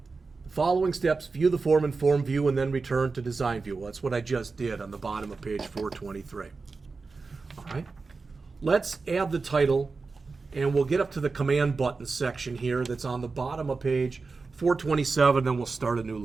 Following steps, view the form in Form View, and then return to Design View. Well, that's what I just did on the bottom of page 423. All right, let's add the title, and we'll get up to the Command Button section here that's on the bottom of page 427, then we'll start a new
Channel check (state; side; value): quieter; left; 4.2 dB